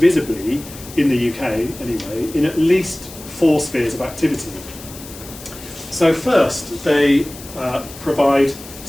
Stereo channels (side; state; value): left; noise; hiss, 16 dB below the sound